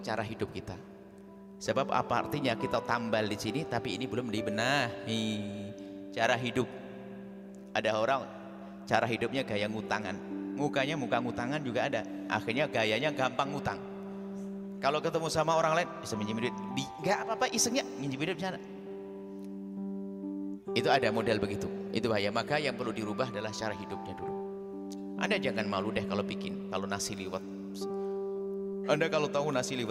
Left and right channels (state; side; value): identical; both; correlation 1.00